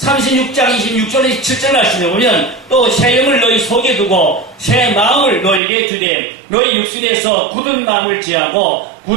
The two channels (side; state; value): left; drops out; at 5.6 s